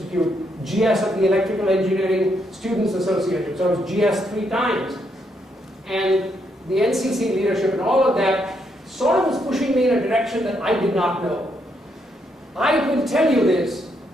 GS at the Electrical Engineering Students Association. So I was GS 3 times. And the NCC leadership and all of that sort of was pushing me in a direction that I did not know. I will tell you this,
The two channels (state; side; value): normal; both; correlation 0.76